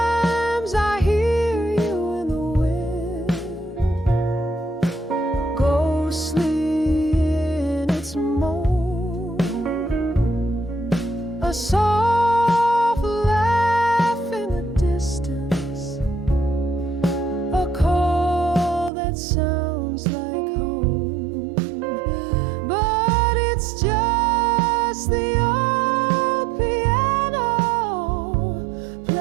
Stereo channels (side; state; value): left; drops out; at 18.9 s